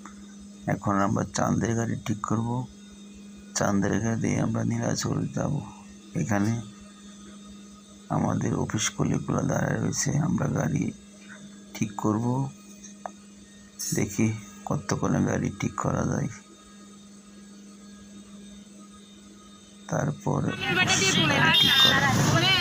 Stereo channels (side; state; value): both; identical; correlation 1.00